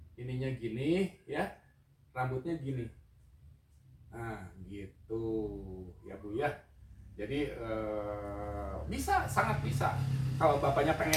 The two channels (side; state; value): both; identical; correlation 1.00